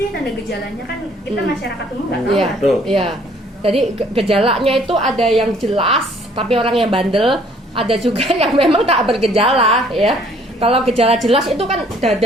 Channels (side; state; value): both; normal; correlation 0.60